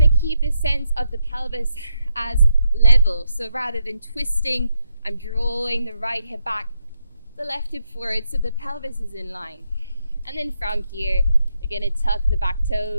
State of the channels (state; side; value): inverted; both; correlation -0.80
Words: to keep this sense of the pelvis as level. So rather than twisting, I'm drawing the right hip back, the left hip forward, so the pelvis is in line. And then from here, we're going to tuck the back